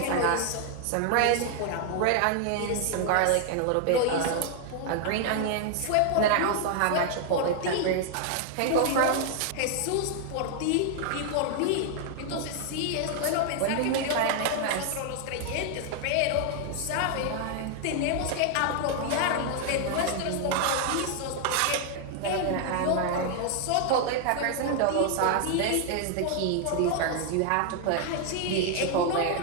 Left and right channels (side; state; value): both; different; correlation 0.00